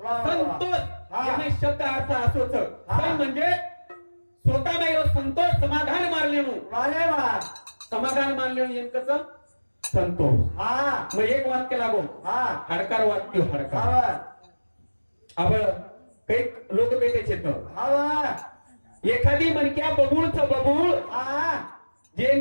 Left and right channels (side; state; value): both; inverted; correlation -1.00